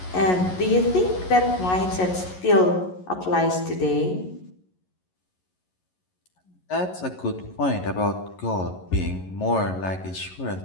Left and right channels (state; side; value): late; right; 11 ms